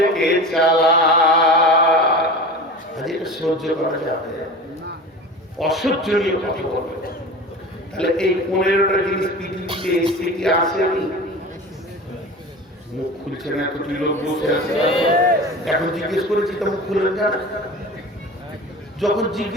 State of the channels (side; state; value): both; normal; correlation 0.34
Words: চালাক। এটা সহ্য করা যাবে? অসহ্যনীয় কথা বলবে। তাহলে এই 15টা জিনিস পৃথিবীতে এসে কি আসেনি? মুখ খুলছে না, এতটি লোক বসে আছে, এখন জিজ্ঞেস করেছি তো মুখ খুলে না, যখন